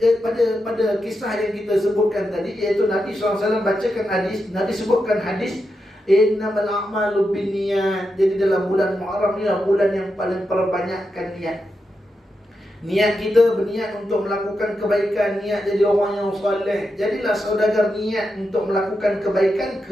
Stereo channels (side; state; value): both; normal; correlation 0.87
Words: kisah yang kita sebutkan tadi, iaitu Nabi SAW bacakan hadis, Nabi sebutkan hadis innamal a'malu binniyat. Jadi dalam bulan Muharram ni adalah bulan yang paling perbanyakkan niat. Niat kita berniat untuk melakukan kebaikan, niat jadi orang yang soleh. Jadilah saudagar niat untuk melakukan kebaikan,